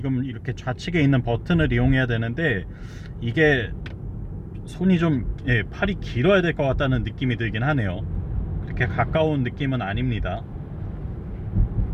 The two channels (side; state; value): both; identical; correlation 1.00